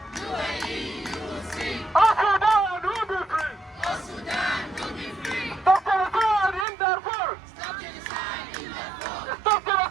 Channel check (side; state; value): left; drops out; at 6.7 s